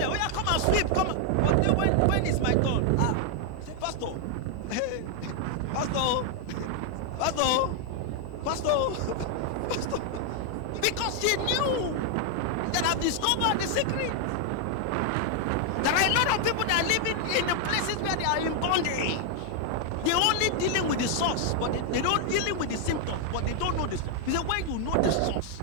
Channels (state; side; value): different; both; correlation 0.00